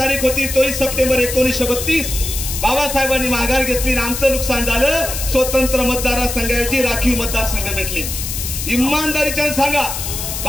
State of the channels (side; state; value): left; noise; hiss, 5 dB below the sound